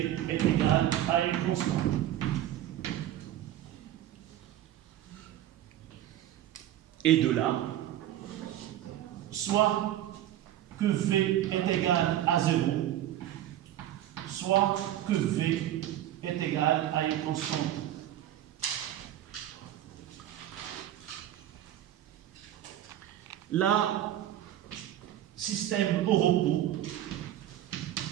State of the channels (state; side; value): quieter; left; 12.5 dB